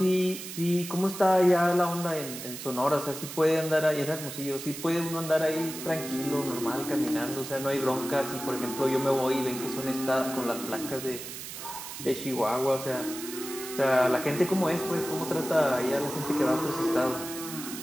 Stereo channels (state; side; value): noise; right; hiss, 10 dB below the sound